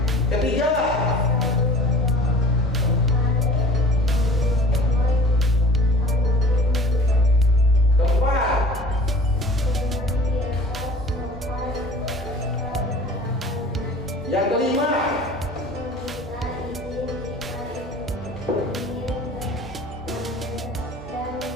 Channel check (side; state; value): both; normal; correlation 0.44